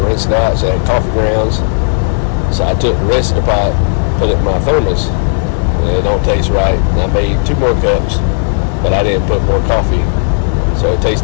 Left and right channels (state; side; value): silent; right; digital silence